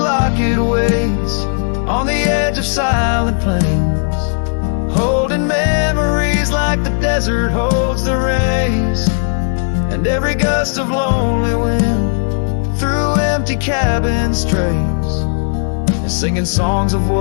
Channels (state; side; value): silent; right; 65 dB below the other